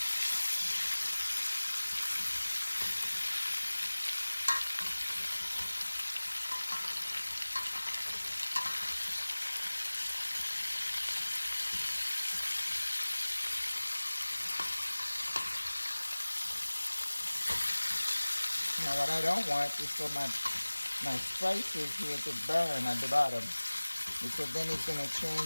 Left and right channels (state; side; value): inverted; both; correlation -1.00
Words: Now what I don't want is for my spices here to burn at the bottom, because then it's going to